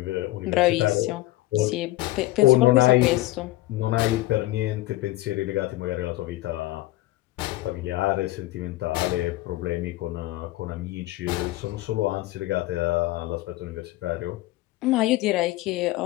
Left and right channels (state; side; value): quieter; right; 17.6 dB